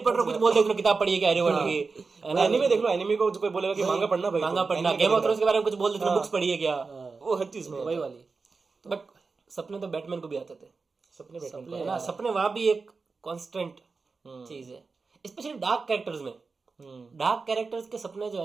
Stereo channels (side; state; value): left; quieter; 4.4 dB